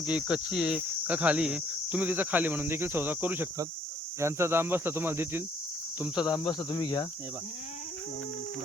की कच्ची आहे का खाली आहे, तुम्ही तिचा खाली म्हणून देखील सौदा करू शकतात. यांचा दाम बसला तुम्हाला देतील, तुमचा दाम बसला तुम्ही घ्या. हे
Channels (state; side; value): normal; both; correlation 0.64